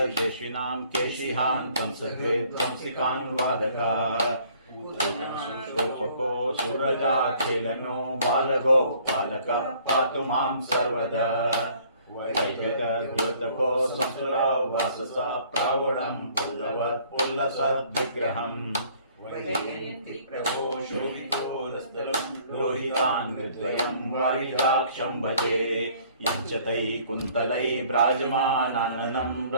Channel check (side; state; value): both; inverted; correlation -0.58